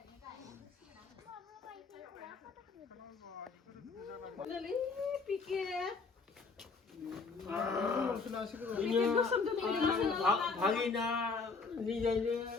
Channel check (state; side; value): quieter; right; 4.5 dB